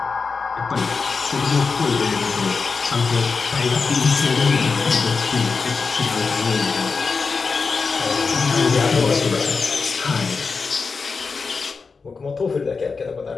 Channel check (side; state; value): right; quieter; 4.8 dB